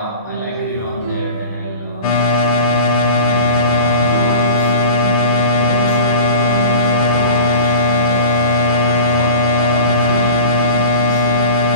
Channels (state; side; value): inverted; both; correlation -0.36